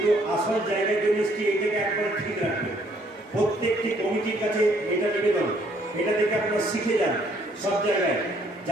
আসল জায়গায় যে মিষ্টি এইটাকে একবার ঠিক রাখবেন। প্রত্যেকটি কমিটির কাছে এটা নিবেদন, এটা দেখে আপনারা শিখে যান। সব জায়গায়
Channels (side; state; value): both; normal; correlation 0.65